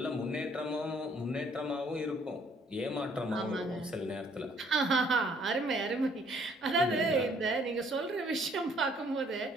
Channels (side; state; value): both; normal; correlation 0.62